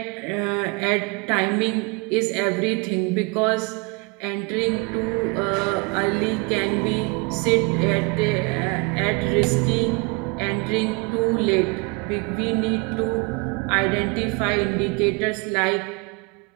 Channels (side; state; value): left; quieter; 29.9 dB